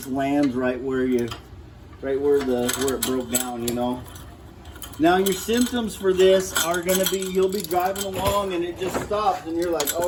lands right where it broke down, you know. Now your symptoms for this are gonna be, you'll be driving along and it just stops and you're like,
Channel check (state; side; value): identical; both; correlation 1.00